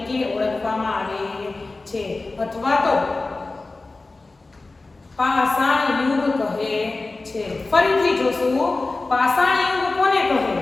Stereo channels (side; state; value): right; quieter; 3.4 dB